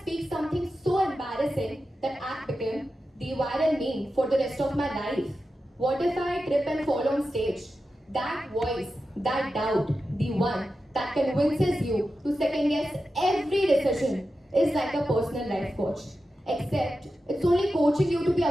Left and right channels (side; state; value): both; normal; correlation 0.91